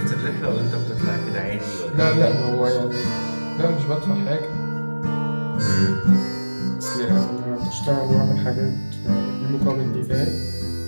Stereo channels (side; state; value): both; inverted; correlation -1.00